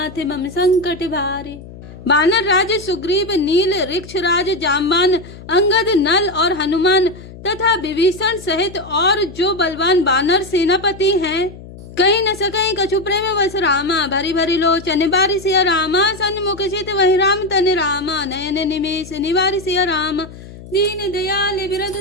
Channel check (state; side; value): noise; left; hum, 16 dB below the sound